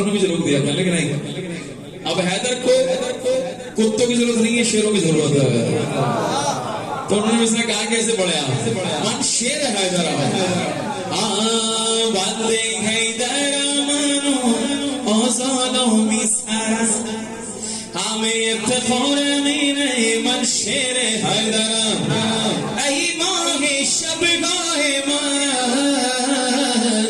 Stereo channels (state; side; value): identical; both; correlation 1.00